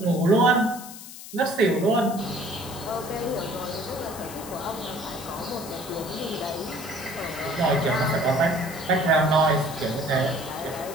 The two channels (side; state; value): left; noise; hiss, 14 dB below the sound